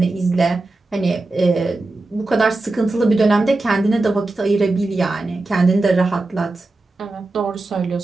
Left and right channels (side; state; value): left; quieter; 3.1 dB